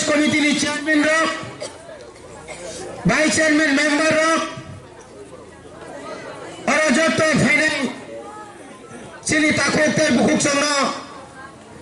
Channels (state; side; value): identical; both; correlation 1.00